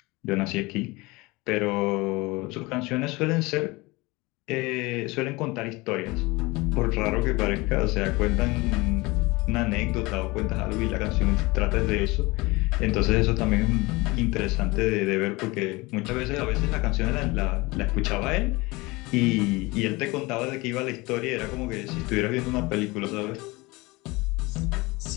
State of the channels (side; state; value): right; quieter; 23.2 dB